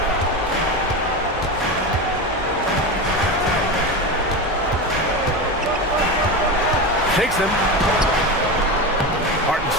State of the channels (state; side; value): normal; both; correlation 0.21